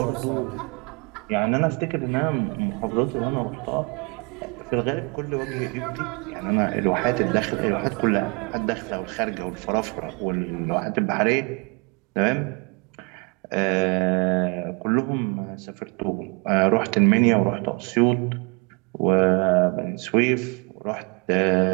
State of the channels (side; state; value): left; quieter; 30.5 dB